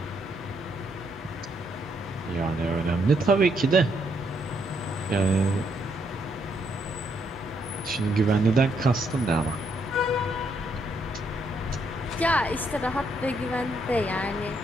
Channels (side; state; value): both; normal; correlation 0.74